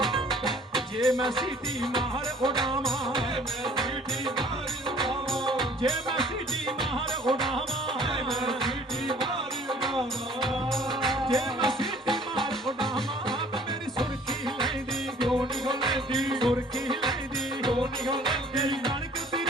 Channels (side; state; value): both; normal; correlation 0.54